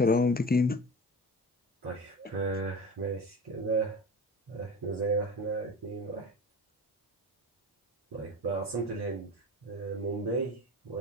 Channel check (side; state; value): both; normal; correlation 0.32